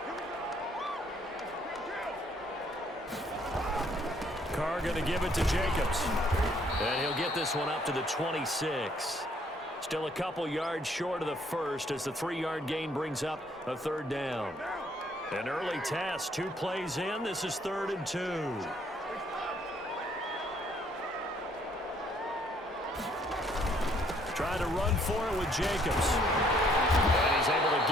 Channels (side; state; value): both; normal; correlation 0.65